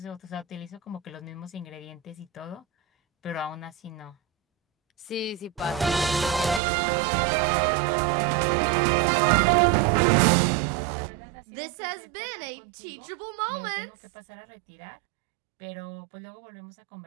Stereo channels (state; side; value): drops out; left; at 6.6 s